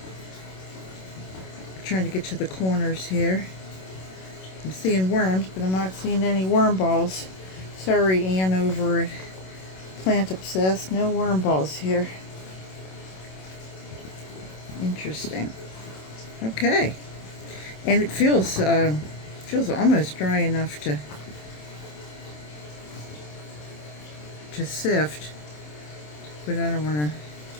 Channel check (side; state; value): right; late; 27 ms